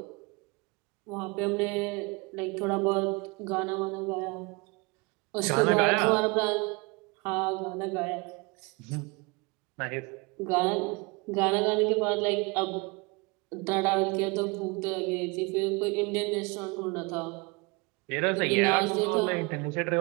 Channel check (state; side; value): quieter; left; 27.9 dB